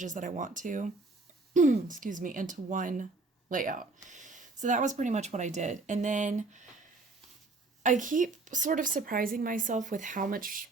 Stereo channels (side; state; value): left; quieter; 3.5 dB